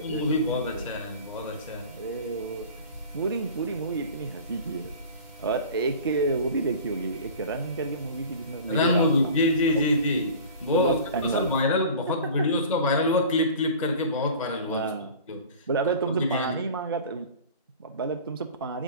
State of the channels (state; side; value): inverted; both; correlation -0.40